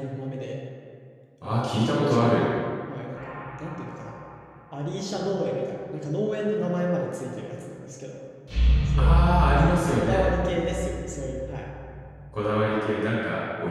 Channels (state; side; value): identical; both; correlation 1.00